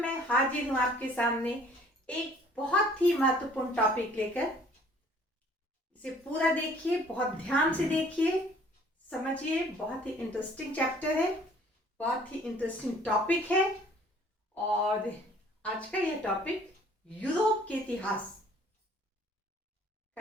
हाजिर हूँ आपके सामने एक बहुत ही महत्वपूर्ण टॉपिक लेकर। इसे पूरा देखिए, बहुत ध्यान से देखिए, समझिए। बहुत ही इंटरेस्टिंग चैप्टर है, बहुत ही इंटरेस्टिंग टॉपिक है। और आज का यह टॉपिक यूरोप के इतिहास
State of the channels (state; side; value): normal; both; correlation 0.56